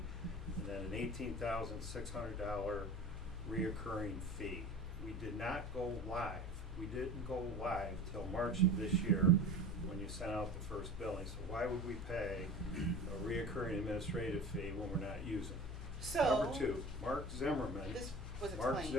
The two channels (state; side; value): normal; both; correlation 0.37